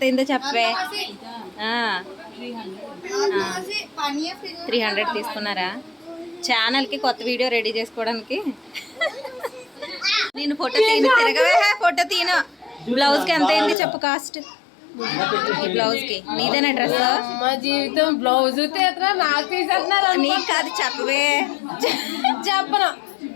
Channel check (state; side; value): drops out; right; at 13.8 s